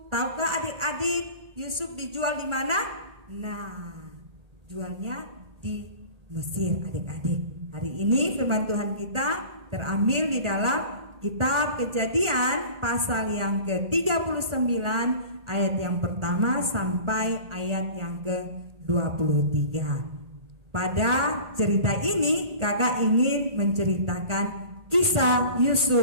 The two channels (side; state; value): left; late; 1.4 ms